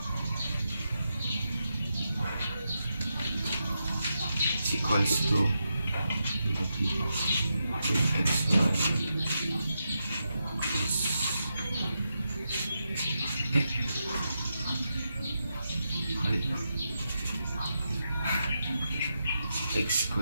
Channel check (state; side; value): inverted; both; correlation -0.86